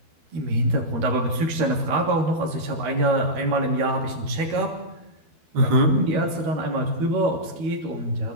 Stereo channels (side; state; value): left; late; 12 ms